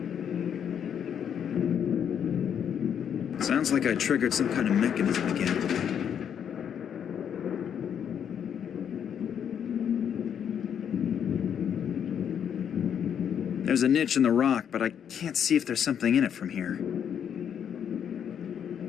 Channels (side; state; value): right; quieter; 8.5 dB